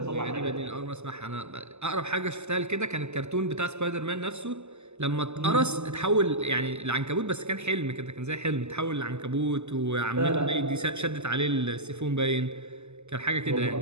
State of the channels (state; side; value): late; left; 0.82 ms